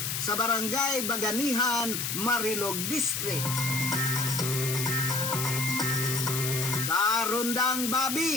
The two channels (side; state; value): left; noise; hiss, 2 dB below the sound